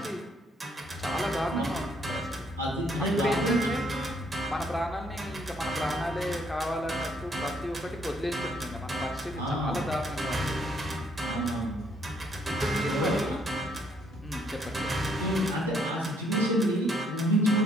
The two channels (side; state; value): both; normal; correlation 0.68